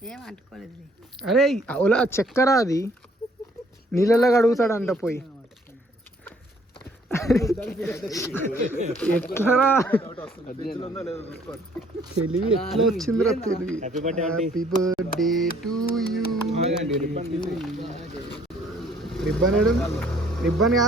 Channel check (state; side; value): normal; both; correlation 0.61